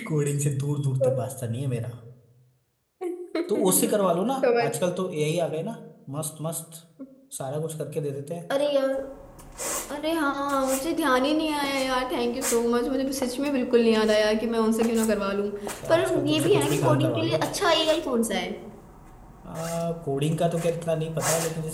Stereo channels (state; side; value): identical; both; correlation 1.00